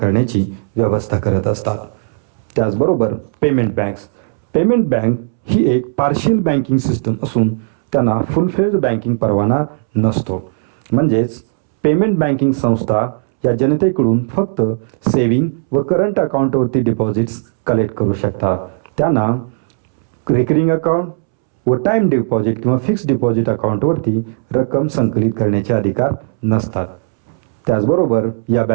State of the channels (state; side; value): silent; left; 69 dB below the other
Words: व्यवस्था करत असतात. त्याचबरोबर पेमेंट बँक्स. पेमेंट बँक ही एक पार्शियल बँकिंग सिस्टम असून त्यांना फुल फ्लेज्ड बँकिंग परवाना नसतो, म्हणजेच पेमेंट बँकिंग संस्था या जनतेकडून फक्त सेविंग व करंट अकाउंटवरती डिपॉझिट्स कलेक्ट करू शकतात. त्यांना रेकरिंग अकाउंट व टाईम डिपॉझिट किंवा फिक्स डिपॉझिट अकाउंटवरती रक्कम संकलित करण्याचे अधिकार नसतात. त्याचबरोबर या